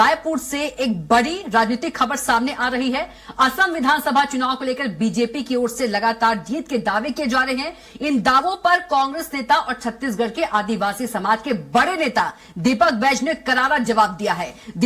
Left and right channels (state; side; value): identical; both; correlation 1.00